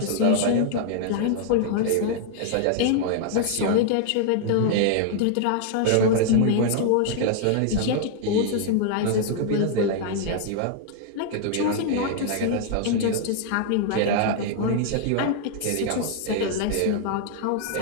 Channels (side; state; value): both; different; correlation -0.01